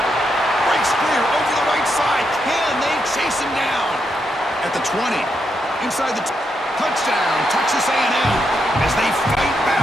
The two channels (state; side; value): normal; both; correlation 0.81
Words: Breaks clear over the right side. Can they chase him down? At the 20. Inside the touchdown, Texas A&M, as they fight